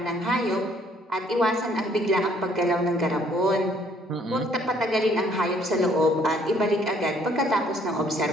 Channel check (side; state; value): both; normal; correlation 0.63